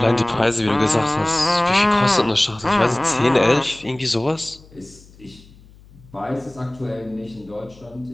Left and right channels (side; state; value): left; noise; hum, 24 dB below the sound